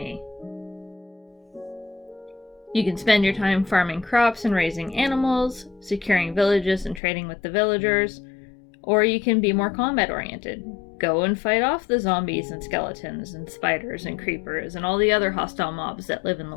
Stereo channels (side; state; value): right; drops out; at 7.0 s